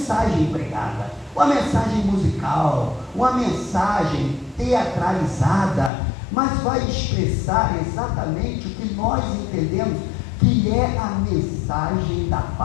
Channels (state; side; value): drops out; right; at 5.9 s